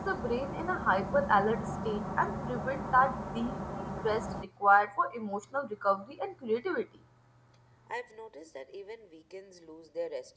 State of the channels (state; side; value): identical; both; correlation 1.00